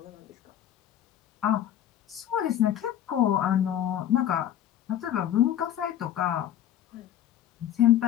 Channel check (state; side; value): quieter; right; 11.0 dB